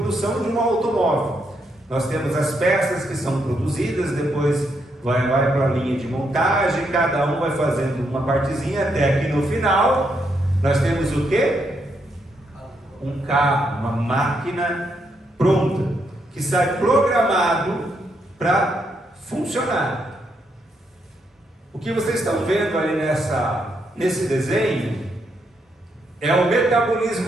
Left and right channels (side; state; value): both; normal; correlation 0.78